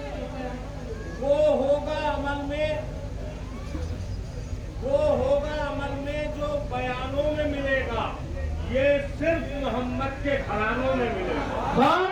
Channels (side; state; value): both; identical; correlation 1.00